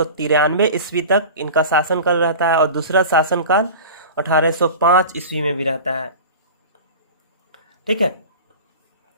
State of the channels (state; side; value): inverted; both; correlation -0.35